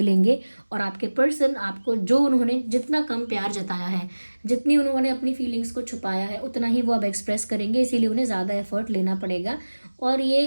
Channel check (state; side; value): inverted; both; correlation -1.00